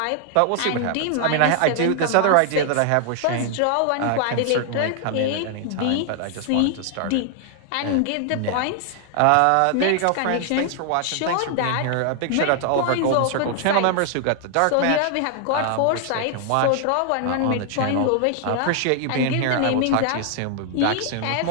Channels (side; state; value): both; different; correlation 0.00